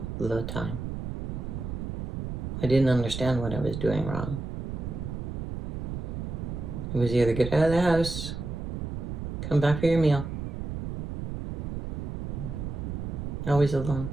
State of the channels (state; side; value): noise; right; rumble, 5 dB below the sound